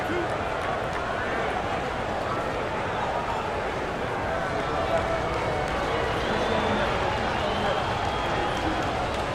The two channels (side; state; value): both; identical; correlation 1.00